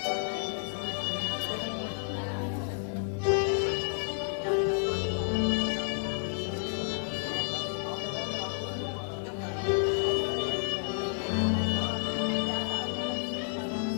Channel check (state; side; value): silent; right; digital silence